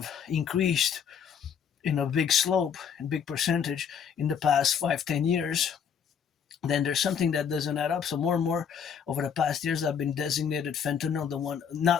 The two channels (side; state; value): right; quieter; 7.4 dB